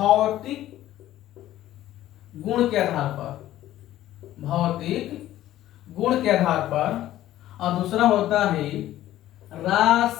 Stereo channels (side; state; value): right; quieter; 13.8 dB